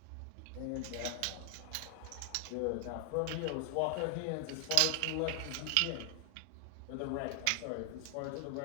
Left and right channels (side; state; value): both; different; correlation 0.00